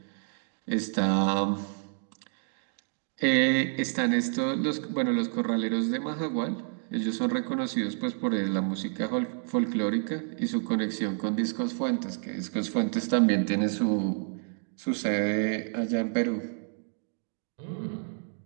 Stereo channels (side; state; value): left; silent; 58 dB below the other